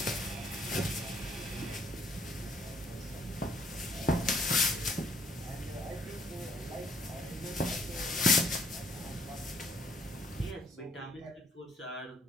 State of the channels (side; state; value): both; normal; correlation 0.64